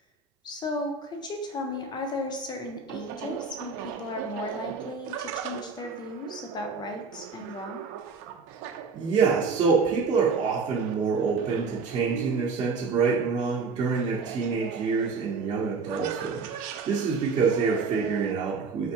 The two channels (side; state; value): left; quieter; 4.6 dB